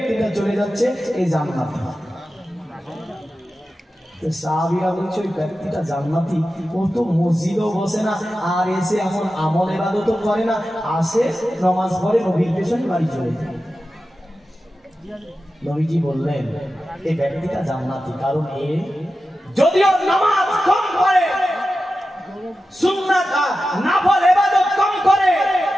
চলে যাচ্ছে এই জান্নাতে। সাহাবীরা বলছে, ওই ব্যক্তিটা জান্নাতি, ও তো মসজিদেও বসে না, আর এসে এমন আমল ইবাদতও করে না, আসে নামাজ পড়ে নবীর পেছনে বাড়ি চলে যায়। নবীজি বললেন, এই ব্যক্তিটা জান্নাতি, কারণ এ যদিও নামাজ কম করে, সুন্নাত নফল ইবাদত কম করে,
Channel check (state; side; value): normal; both; correlation 0.92